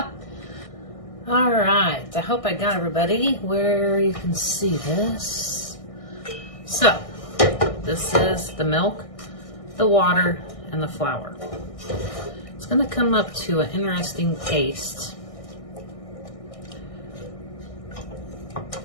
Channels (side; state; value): right; late; 1.6 ms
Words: All right, I hope I got everybody where you can see this. So, this is the milk, the water, and the flour. It's gonna come up to an interesting paste.